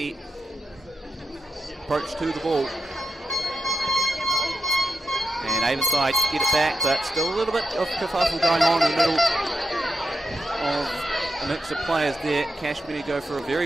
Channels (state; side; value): normal; both; correlation 0.85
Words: approach to the ball. And Avonside get it back, but still a little bit of kerfuffle going on in the middle of a mix of players there. Cashmere go for a